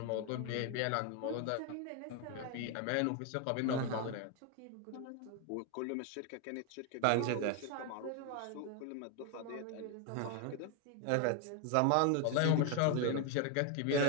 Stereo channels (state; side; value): different; both; correlation 0.01